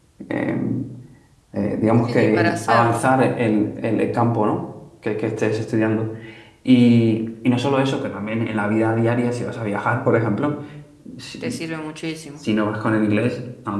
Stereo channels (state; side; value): identical; both; correlation 1.00